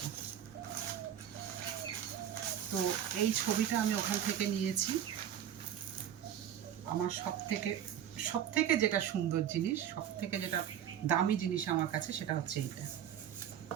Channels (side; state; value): left; quieter; 10.0 dB